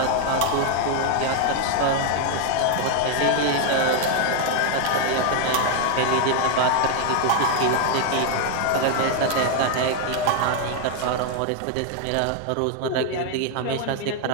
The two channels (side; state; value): both; different; correlation 0.00